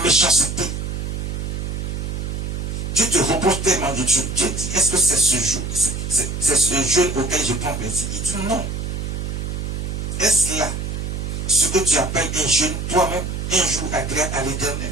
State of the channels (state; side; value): noise; right; hum, 4 dB below the sound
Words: Dieu te reproche tellement de choses. Dieu dit, est-ce que c'est ce jour, c'est ce jeûne auquel je prends plaisir? Il dit non. Est-ce là ce que tu appelles un jeûne toi-même, un jour agréable à l'Éternel?